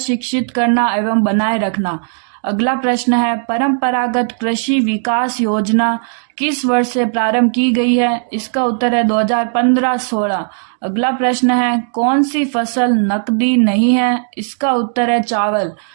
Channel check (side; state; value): left; silent; digital silence